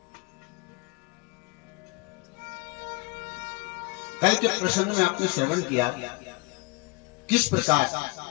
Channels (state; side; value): quieter; right; 27.3 dB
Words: कल के प्रसंग में आपने श्रवण किया किस प्रकार